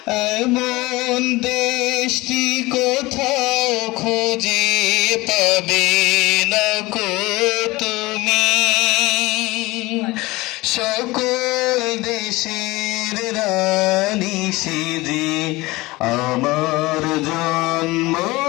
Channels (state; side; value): quieter; right; 21.0 dB